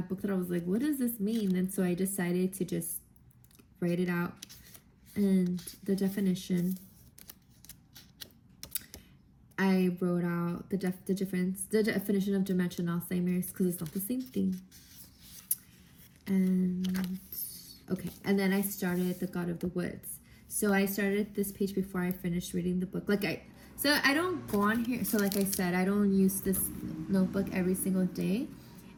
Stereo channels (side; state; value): both; identical; correlation 1.00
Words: book that I was like, what does this mean? And so I decided to just write it out. And the definition, I wrote out the definition of dementia and Alzheimer's, because it's not the same thing. And okay, and then I started The God of the Woods. So I started this page before I finished reading the book. So I don't go on here. So like I said, I don't use this notebook every single day.